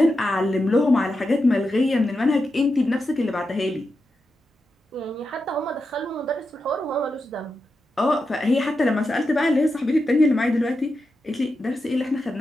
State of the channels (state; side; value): normal; both; correlation 0.88